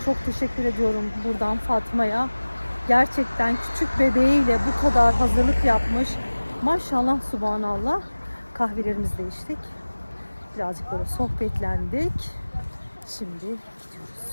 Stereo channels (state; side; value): inverted; both; correlation -1.00